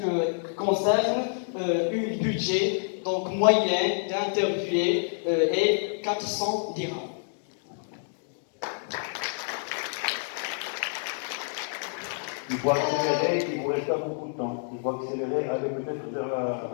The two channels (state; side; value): silent; right; 59 dB below the other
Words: concerne un budget donc moyen d'interviewé est 400 dirhams. Il faut accélérer, il vous reste pas beaucoup de temps. Il faut accélérer, aller peut-être vers la